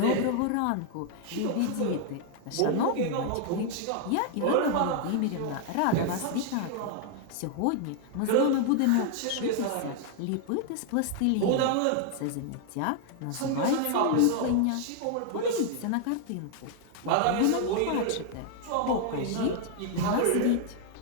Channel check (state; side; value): different; both; correlation 0.00